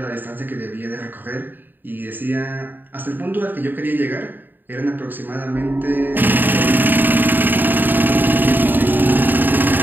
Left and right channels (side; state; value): left; late; 0.091 ms